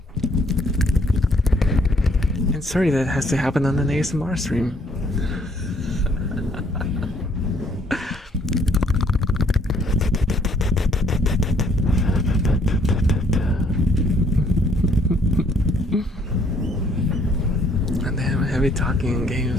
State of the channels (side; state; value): both; normal; correlation 0.65